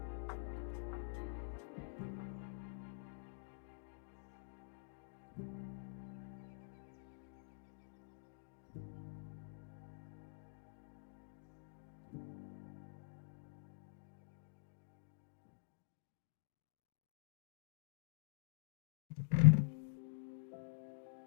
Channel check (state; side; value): silent; right; digital silence